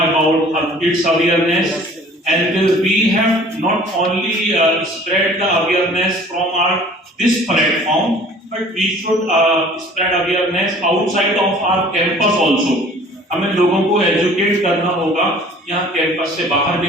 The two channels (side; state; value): both; normal; correlation 0.50